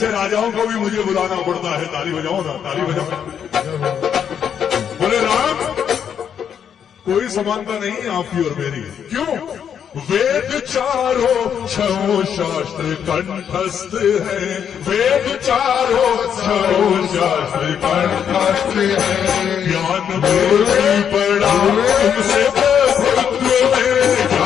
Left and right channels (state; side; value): quieter; right; 8.2 dB